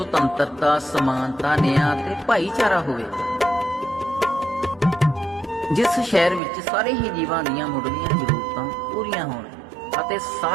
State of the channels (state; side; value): drops out; left; at 6.4 s